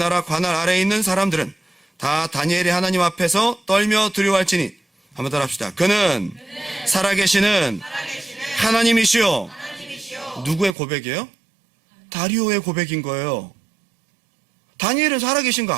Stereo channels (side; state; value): left; drops out; at 10.8 s